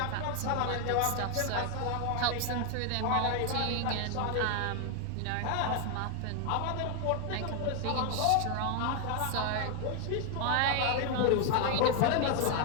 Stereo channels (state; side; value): different; both; correlation 0.01